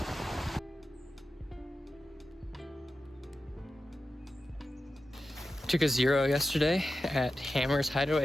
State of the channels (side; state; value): both; normal; correlation 0.92